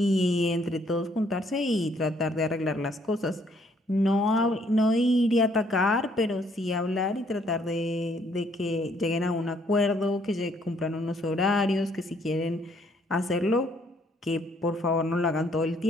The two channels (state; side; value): normal; both; correlation 0.66